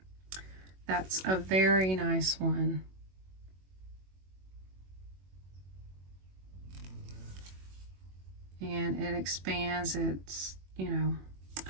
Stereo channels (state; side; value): late; left; 21 ms